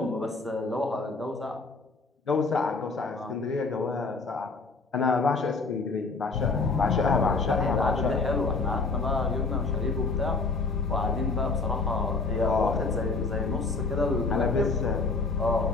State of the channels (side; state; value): right; quieter; 3.9 dB